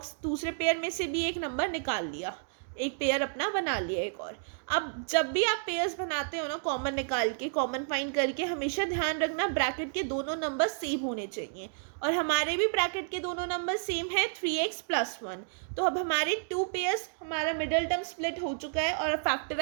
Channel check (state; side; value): silent; left; digital silence